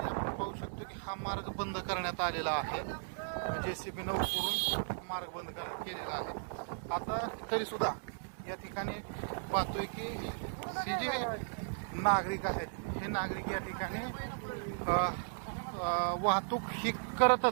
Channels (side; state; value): left; silent; digital silence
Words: आपण पाहू शकतो की हा मार्ग बंद करण्यात आलेला आहे. JCB करून मार्ग बंद केलेला आहे. आता तरी सुद्धा या ठिकाणी पाहतोय की हे जे नागरिक आहेत हे नागरिक या ठिकाणी वाहतूक ही